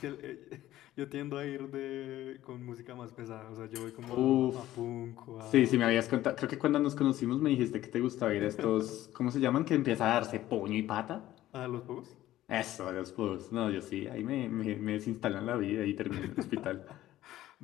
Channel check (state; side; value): quieter; right; 14.4 dB